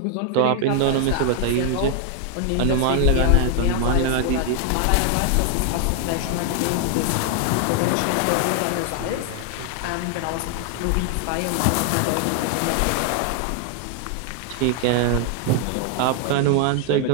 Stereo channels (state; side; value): different; both; correlation 0.00